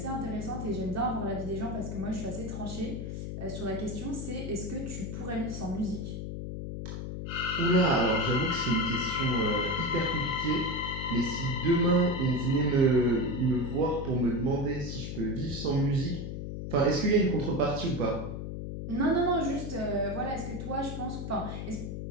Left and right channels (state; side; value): noise; left; hum, 6 dB below the sound